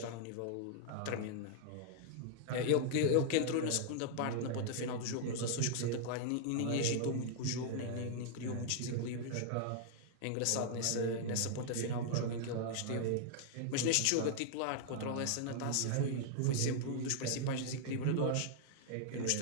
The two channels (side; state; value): both; different; correlation -0.01